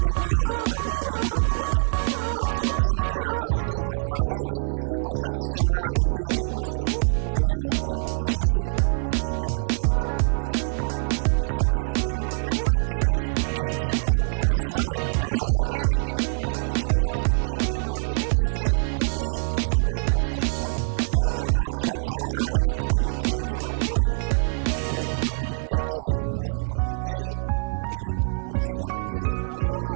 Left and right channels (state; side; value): silent; left; digital silence